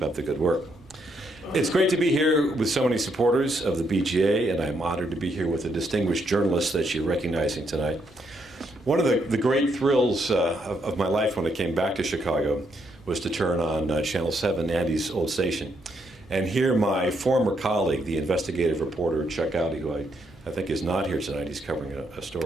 up the good work. It's great to be here with so many supporters of the BJA, and I'm honored to be here with a distinguished journalist that you're recognizing tonight. One of the great thrills of my life when I came back to Chicago was to turn on Channel 7, Andy's old station, and hear my former colleague, the investigative reporter Chuck Gowdy, who I think is not here tonight. He's covering a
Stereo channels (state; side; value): normal; both; correlation 0.76